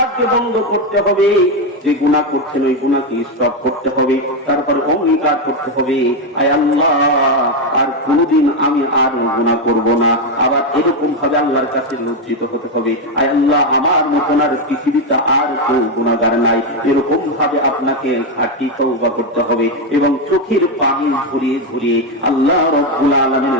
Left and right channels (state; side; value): normal; both; correlation 0.07